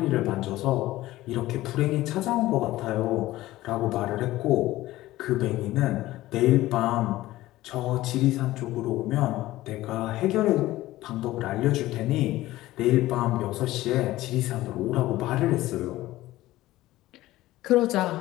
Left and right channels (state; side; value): quieter; right; 16.6 dB